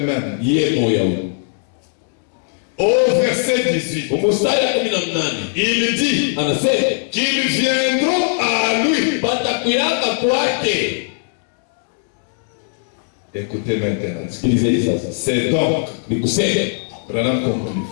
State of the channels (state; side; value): silent; right; digital silence